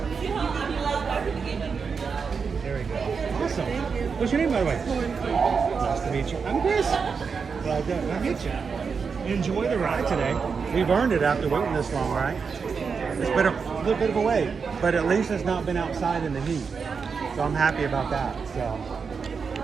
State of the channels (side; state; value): left; quieter; 5.6 dB